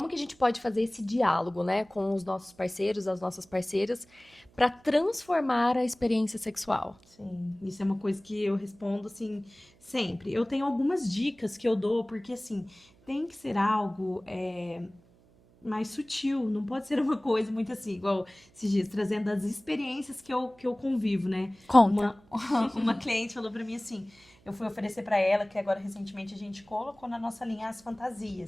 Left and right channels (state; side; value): noise; right; hum, 29 dB below the sound